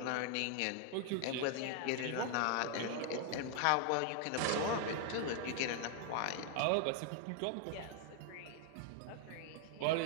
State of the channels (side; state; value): both; different; correlation 0.00